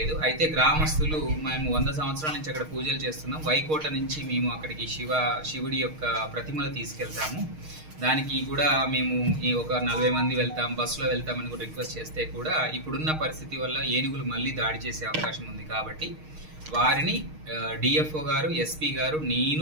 అయితే గ్రామస్తులు మేము 100 సంవత్సరాల నుంచి అక్కడ పూజలు చేస్తున్నాం. వైకోట నుంచి మేము అక్కడికి శివుడి యొక్క ప్రతిమలు తీసుకెళ్తాము. దానికి కూడా మేము ఒక 40 మంది వెళ్తాం, బస్సులో వెళ్తామని కూడా రిక్వెస్ట్ చేస్తే కూడా ఇప్పుడున్న పరిస్థితి వల్ల ఏనుగులు మళ్ళీ దాడి చేసే అవకాశం ఉంది. కాబట్టి వారిని డిఎఫ్ఓ గారు, ఎస్పీ గారు,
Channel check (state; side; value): late; left; 6.4 ms